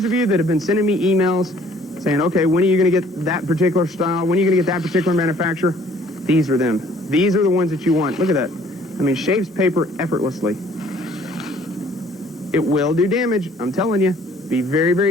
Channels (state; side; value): normal; both; correlation 0.57